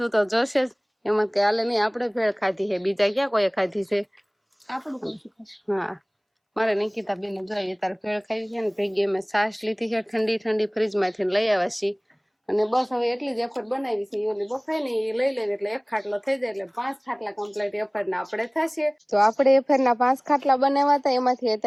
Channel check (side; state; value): both; identical; correlation 1.00